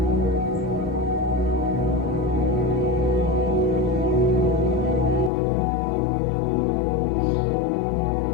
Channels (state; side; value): drops out; right; at 5.3 s